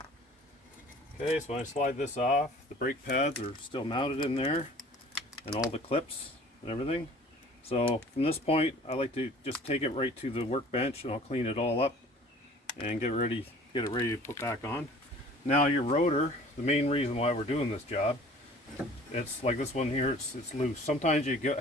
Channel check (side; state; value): both; normal; correlation 0.49